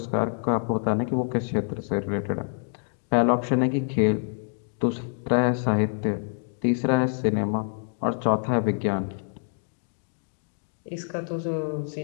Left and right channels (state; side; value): silent; right; 60 dB below the other